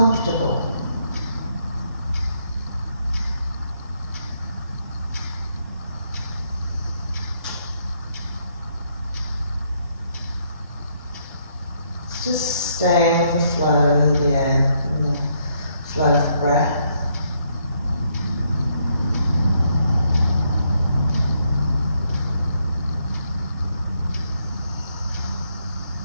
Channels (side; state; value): both; inverted; correlation -0.73